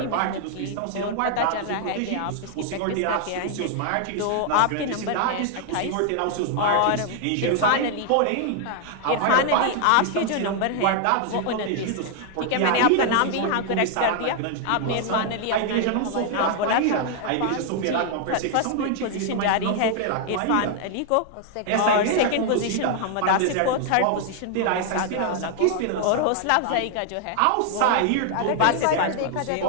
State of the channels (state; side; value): different; both; correlation 0.00